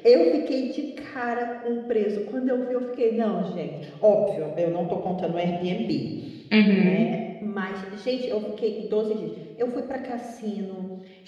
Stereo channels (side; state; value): both; identical; correlation 1.00